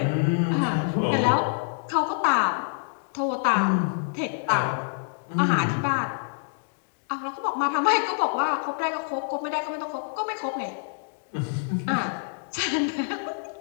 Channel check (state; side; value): silent; right; digital silence